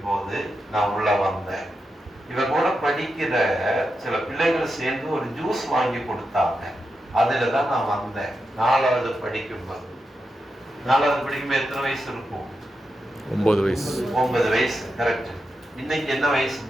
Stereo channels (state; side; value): normal; both; correlation 0.88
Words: போது நான் உள்ள வந்தேன். இவ கூட படிக்கிற சில பிள்ளைகள் சேர்ந்து ஒரு ஜூஸ் வாங்கி கொடுத்தாங்க, அதுலதான் நான் வந்தேன். 4வது படிக்கும்போது. 4வது படிக்கும்போது எத்தனை வயசு இருக்கும்? 9 வயசு. 9 வயசு, கரெக்ட். இன்னைக்கு என்ன